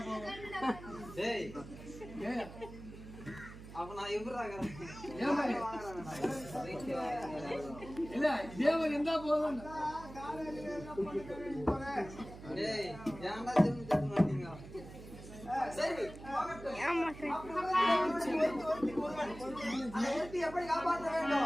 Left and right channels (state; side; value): noise; right; hum, 14 dB below the sound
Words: போகும். அப்ப நான் எவ்வளவு இல்ல தேவன் எந்த போதும் எப்படி காப்பாற்ற